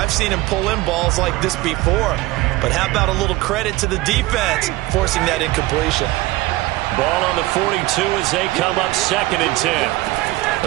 seen him pull in balls like this before. But how about a little credit to the defense forcing that incompletion? Ball on the 42 as they come up 2nd and 10.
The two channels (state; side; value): quieter; left; 19.3 dB